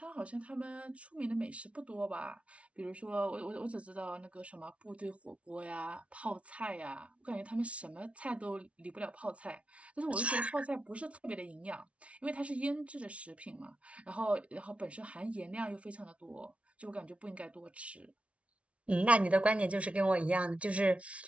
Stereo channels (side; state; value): left; late; 0.062 ms